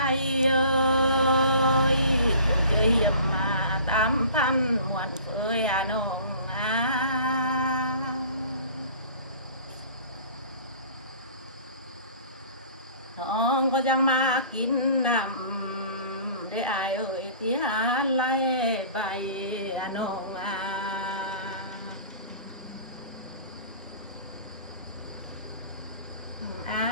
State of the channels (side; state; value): both; inverted; correlation -0.47